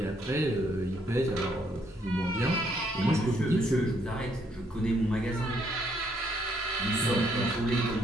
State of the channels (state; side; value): normal; both; correlation 0.71